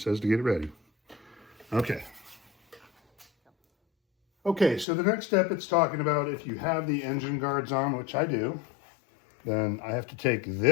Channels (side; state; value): right; drops out; at 4.9 s